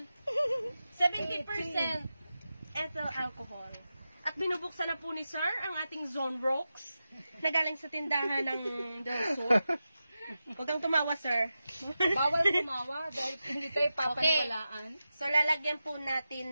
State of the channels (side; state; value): both; inverted; correlation -0.92